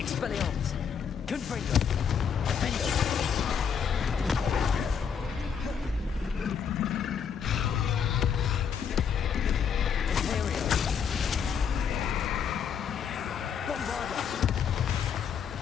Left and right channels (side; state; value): right; quieter; 7.2 dB